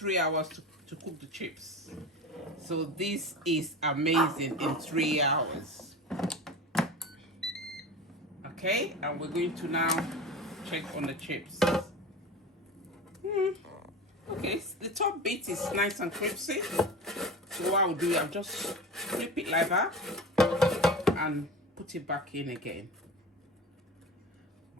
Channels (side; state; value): both; normal; correlation 0.30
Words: hours to cook the chips, so this is amazing in 3 hours. Okay, and we're going to now check on the chips. Okay, the top bit is nice and crispy. So what I'll do, I'll just flip it like that and put it back in again.